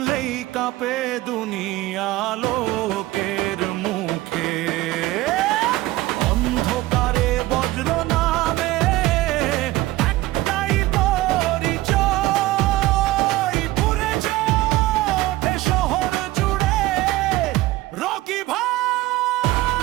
কাঁপে দুনিয়া লোকের মুখে। অন্ধকারে বজ্র নামে একটাই পরিচয়, পুড়েছে ওঠে শহর জুড়ে রকি ভাই।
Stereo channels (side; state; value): left; quieter; 17.9 dB